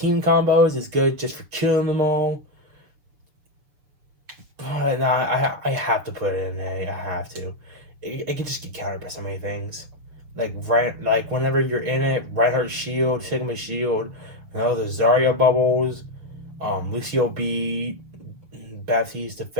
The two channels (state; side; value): late; left; 6.7 ms